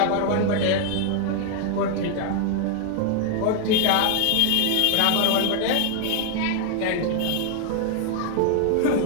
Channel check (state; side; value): different; both; correlation 0.00